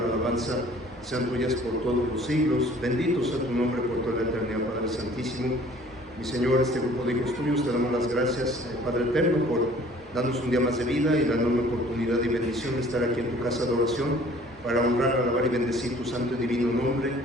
alabanza sean tuyas por todos los siglos. Bendito sea tu nombre por toda la eternidad, Padre Santísimo. Mi Señor, este grupo de hijos tuyos, te damos las gracias, Padre Eterno, por darnos un día más de vida y la enorme oportunidad y bendición de estar aquí en tu casa de oración para honrar, alabar y bendecir tu santo y divino nombre,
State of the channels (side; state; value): both; normal; correlation 0.52